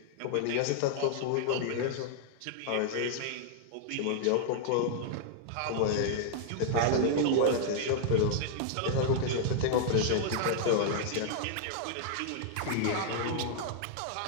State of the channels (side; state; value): both; different; correlation -0.01